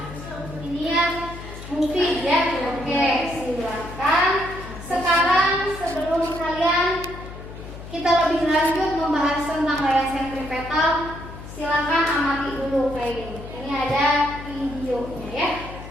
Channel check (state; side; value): noise; left; hum, 13 dB below the sound